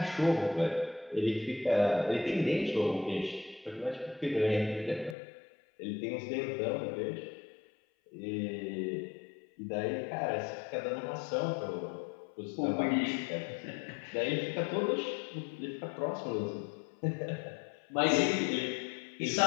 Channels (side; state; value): right; drops out; at 5.2 s